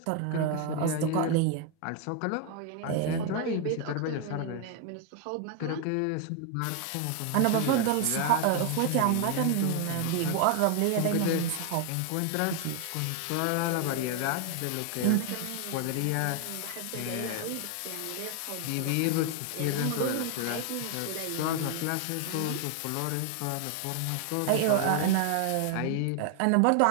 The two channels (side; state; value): both; different; correlation 0.00